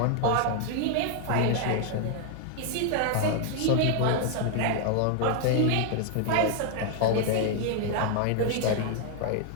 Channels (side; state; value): both; different; correlation 0.00